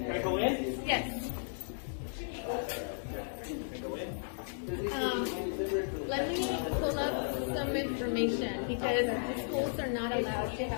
Can I go in? Yes. Let me pull up some information because the schools are not allowed to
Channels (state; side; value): silent; right; 55 dB below the other